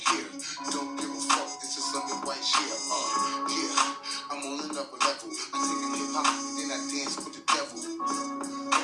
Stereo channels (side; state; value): both; identical; correlation 1.00